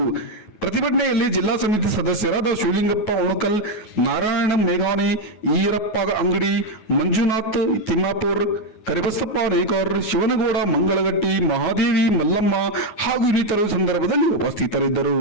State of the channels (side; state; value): right; late; 9.3 ms